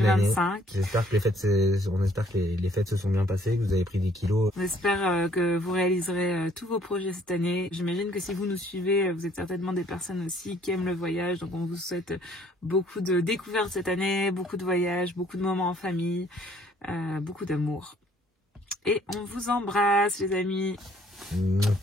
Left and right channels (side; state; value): both; normal; correlation 0.61